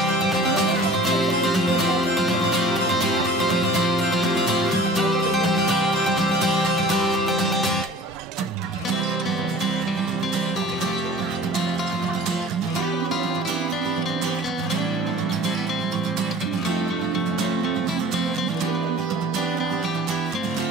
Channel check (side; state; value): both; normal; correlation 0.46